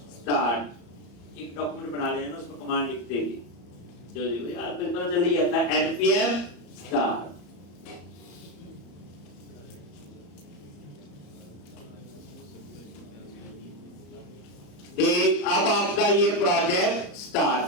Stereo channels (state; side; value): late; right; 34 ms